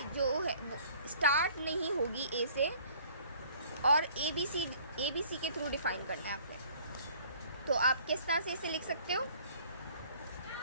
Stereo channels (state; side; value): inverted; both; correlation -0.54